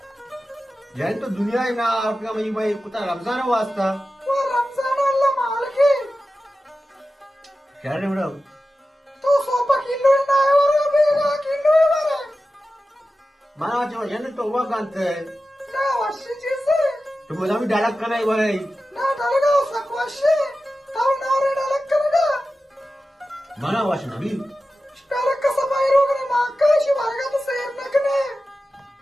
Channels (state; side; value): normal; both; correlation 0.93